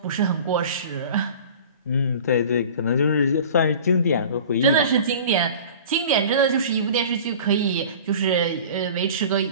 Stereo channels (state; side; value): inverted; both; correlation -0.41